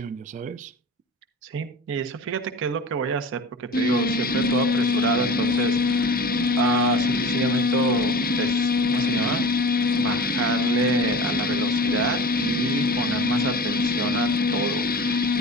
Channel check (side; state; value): both; normal; correlation 0.36